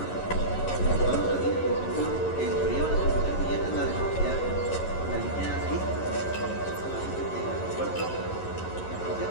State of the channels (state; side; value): late; right; 11 ms